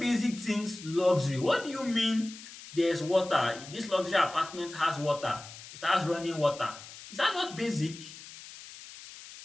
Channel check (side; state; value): left; noise; hiss, 15 dB below the sound